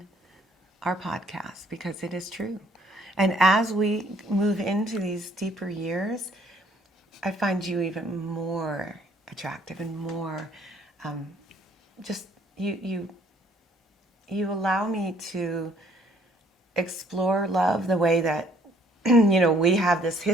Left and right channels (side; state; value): both; normal; correlation 0.62